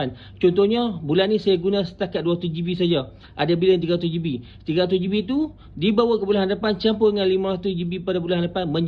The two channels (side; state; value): both; identical; correlation 1.00